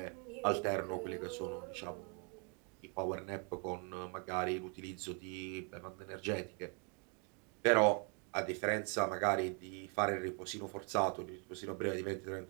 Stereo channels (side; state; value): left; quieter; 37.6 dB